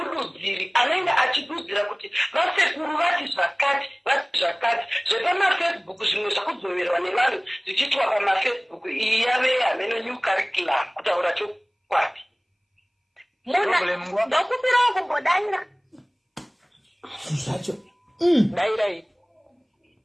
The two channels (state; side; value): identical; both; correlation 1.00